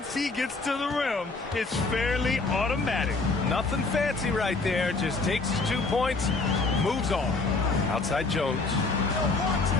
he gets to the rim, it's fairly automatic. Nothing fancy right there. Just takes his 2 points, moves on. Outside Jones.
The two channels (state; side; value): quieter; right; 3.7 dB